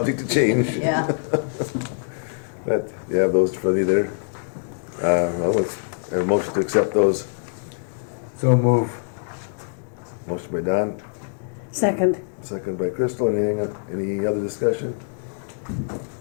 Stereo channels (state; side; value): silent; right; digital silence